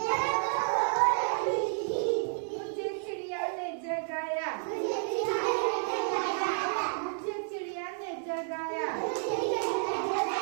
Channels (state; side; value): silent; left; 57 dB below the other